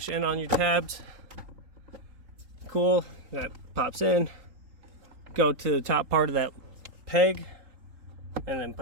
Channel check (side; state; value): left; late; 3.8 ms